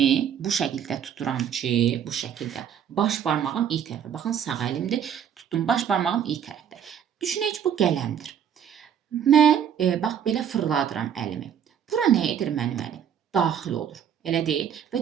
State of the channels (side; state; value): left; quieter; 8.7 dB